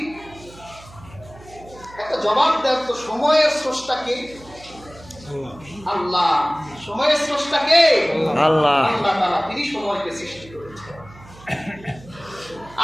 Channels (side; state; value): right; noise; hum, 21 dB below the sound